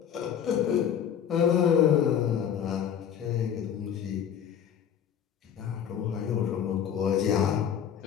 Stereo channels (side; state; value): right; quieter; 8.8 dB